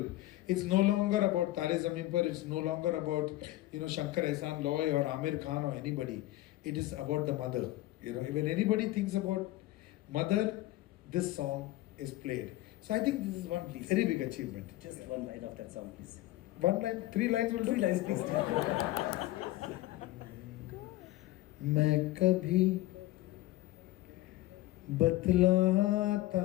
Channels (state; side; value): quieter; right; 16.8 dB